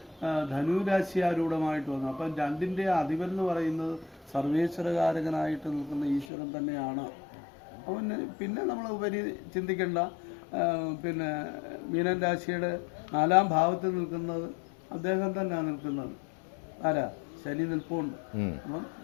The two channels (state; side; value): drops out; right; at 6.2 s